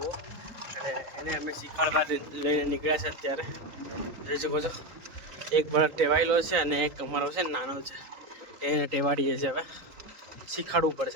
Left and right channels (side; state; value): left; late; 3.9 ms